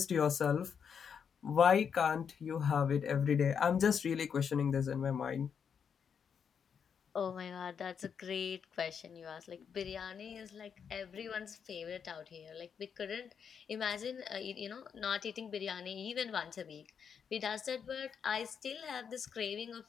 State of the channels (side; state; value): right; quieter; 7.1 dB